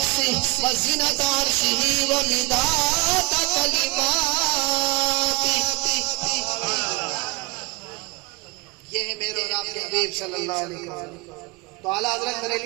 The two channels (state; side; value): quieter; left; 24.9 dB